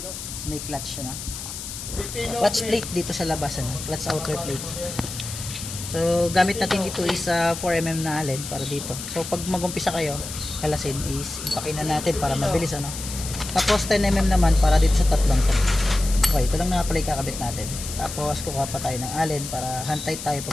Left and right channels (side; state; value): left; noise; hiss, 9 dB below the sound